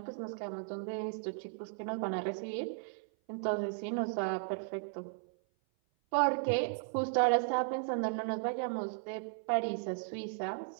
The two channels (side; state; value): left; silent; 54 dB below the other